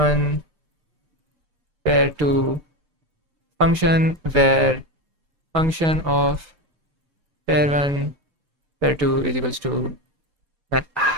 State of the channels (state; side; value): late; left; 6.6 ms